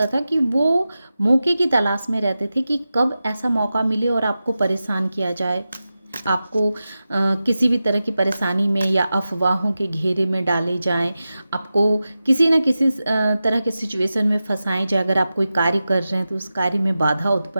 था कि वो मौके की तलाश में रहते थे कि कब ऐसा मौका मिले और आपको परेशान किया जाए, आपको किसी भी तरह की परेशानी में या अफवाहों के घेरे में डाले जाएं, आपको किसी न किसी तरह के सिचुएशन में फंसाएं जाए। अगर आप कोई कार्य कर रहे हैं तो उस कार्य में बाधा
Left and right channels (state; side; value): inverted; both; correlation -0.93